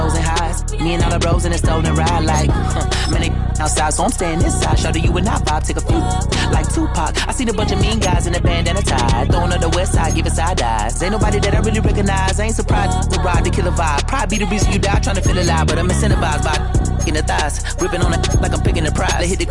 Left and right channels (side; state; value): both; identical; correlation 1.00